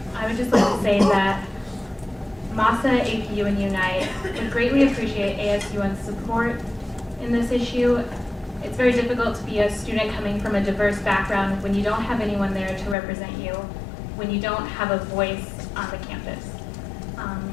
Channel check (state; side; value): drops out; right; at 13.0 s